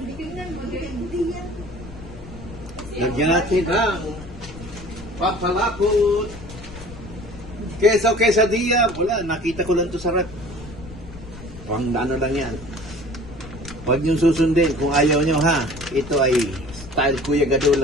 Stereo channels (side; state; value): left; noise; rumble, 16 dB below the sound